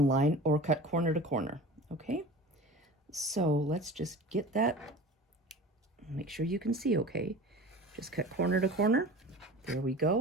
line, or cut corner to corner. Okay? So let's just get that. Make sure you can see okay. Just cut corner to corner. There we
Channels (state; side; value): normal; both; correlation 0.37